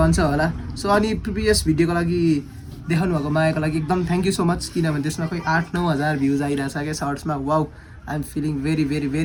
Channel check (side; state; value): both; identical; correlation 1.00